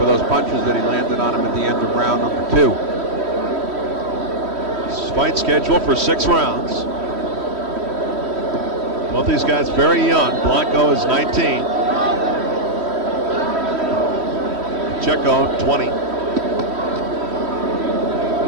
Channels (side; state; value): left; late; 3.1 ms